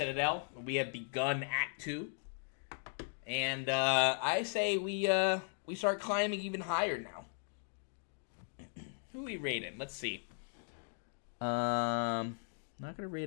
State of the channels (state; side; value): silent; right; 53 dB below the other